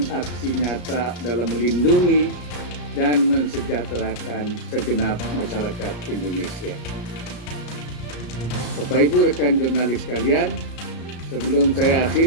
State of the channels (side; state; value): right; late; 34 ms